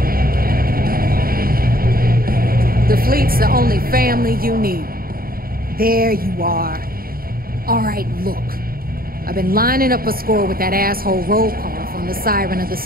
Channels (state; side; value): late; left; 0.43 ms